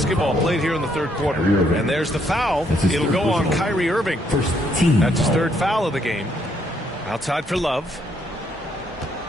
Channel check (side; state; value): both; normal; correlation 0.71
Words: played here in the third quarter. And there's the foul. It'll go on Kyrie Irving. That's his 3rd foul of the game. Outside for Love.